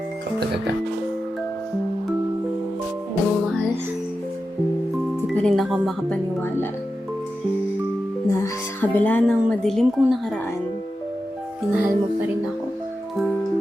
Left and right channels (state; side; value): normal; both; correlation 0.91